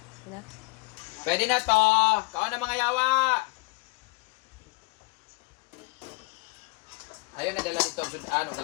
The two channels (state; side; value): quieter; right; 26.1 dB